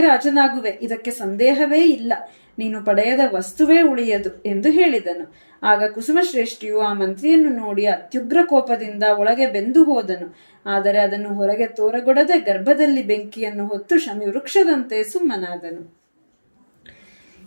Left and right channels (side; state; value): both; inverted; correlation -1.00